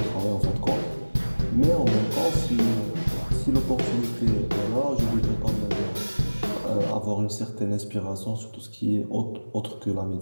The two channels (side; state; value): both; inverted; correlation -1.00